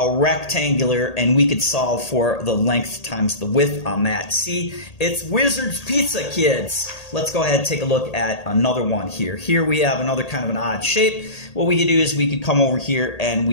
rectangular, and we could solve for the length times the width on that. See, it's Wizard's Pizza, kids. Let's go ahead and take a look at another one here. Here we have another kind of an odd shape. What we could do is we could come over here and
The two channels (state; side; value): late; right; 1.8 ms